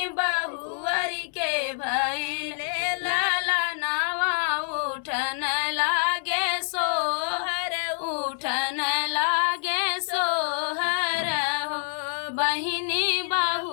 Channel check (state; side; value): silent; right; digital silence